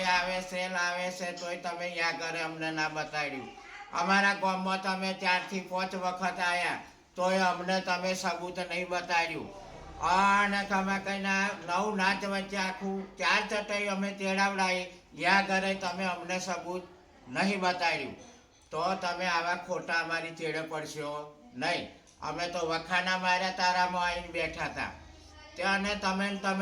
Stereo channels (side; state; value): both; identical; correlation 1.00